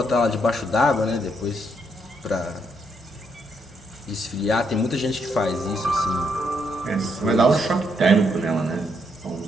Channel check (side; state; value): both; normal; correlation 0.76